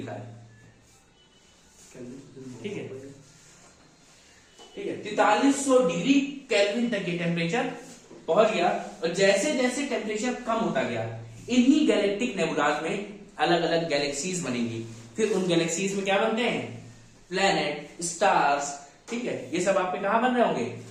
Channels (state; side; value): identical; both; correlation 1.00